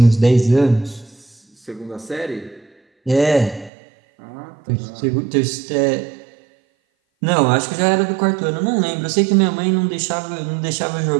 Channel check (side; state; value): left; drops out; at 3.7 s